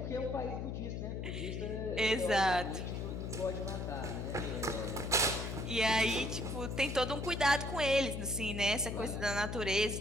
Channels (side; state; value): left; noise; hum, 4 dB below the sound